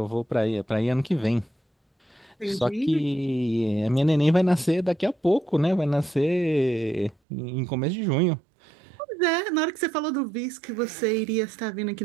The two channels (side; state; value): left; drops out; at 7.2 s